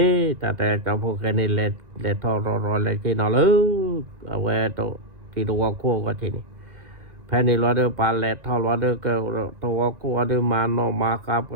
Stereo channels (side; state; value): left; late; 1.9 ms